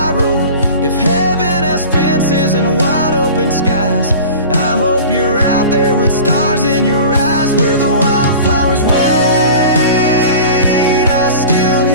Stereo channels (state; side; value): inverted; both; correlation -0.38